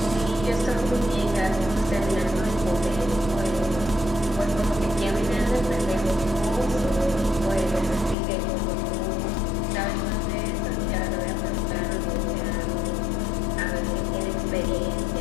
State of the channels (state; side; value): drops out; right; at 8.2 s